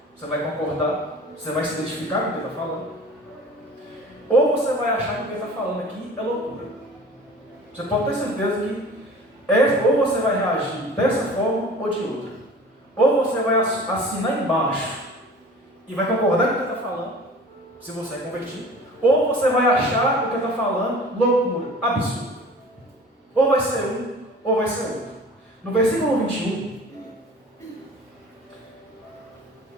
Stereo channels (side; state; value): both; normal; correlation 0.43